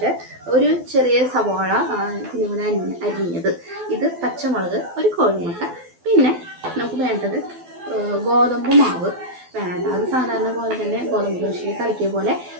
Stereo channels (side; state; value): left; late; 12 ms